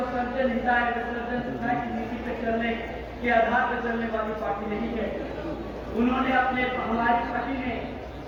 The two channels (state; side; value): identical; both; correlation 1.00